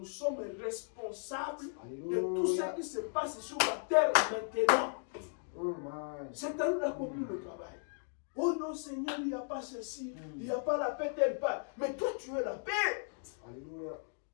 sommes responsables de tout ce Alléluia. qui se passe sur la terre maintenant. Oh my. C'est à nous d'accomplir le travail. Oh non, Seigneur, il n'y a pas ceci, il n'y a pas la paix telle part. Mais toi, tu es la paix. Alléluia.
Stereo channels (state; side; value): silent; right; 54 dB below the other